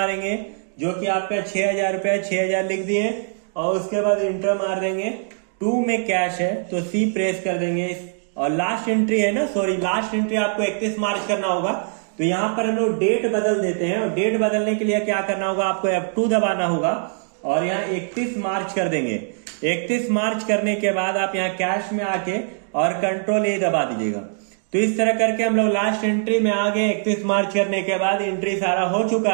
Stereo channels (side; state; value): left; silent; digital silence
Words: जो कि आपका 6,000 रुपया, 6,000 लिख दिए और उसके बाद इंटर मार देंगे। 2 में कैश है तो C प्रेस कर देंगे। और लास्ट एंट्री है ना, सॉरी लास्ट एंट्री आपको 31 मार्च करना होगा। तो यहाँ पर हम लोग डेट बदल देते हैं और डेट बदलने के लिए क्या करना होगा, आपको F2 दबाना होगा और यहाँ 31 मार्च कर देंगे। 31 मार्च करने के बाद आप यहाँ कैश में आके और कंट्रोल ए दबा दीजिएगा। तो इस तरह करके हम लोग लास्ट एंट्री में आ गए। 31 मार्च करने के बाद एंट्री सारा हो